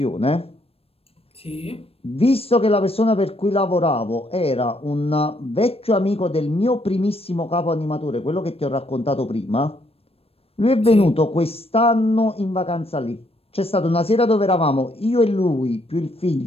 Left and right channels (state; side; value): late; right; 0.28 ms